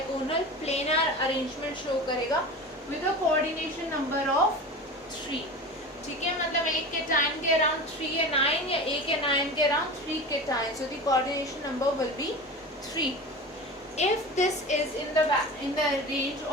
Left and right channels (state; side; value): normal; both; correlation 0.31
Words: प्लेनर अरेंजमेंट शो करेगा with a coordination number of 3. ठीक है. मतलब एक केटायन के अराउंड 3 या 9 या एक एनायन के around 3 cation, so the coordination number will be 3. If this is in the range